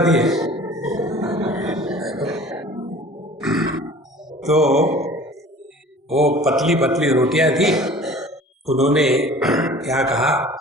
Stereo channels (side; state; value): both; normal; correlation 0.45